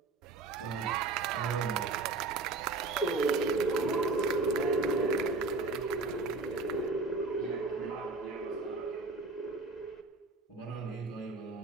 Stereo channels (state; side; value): quieter; left; 3.7 dB